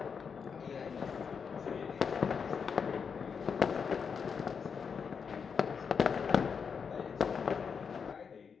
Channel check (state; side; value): quieter; right; 6.2 dB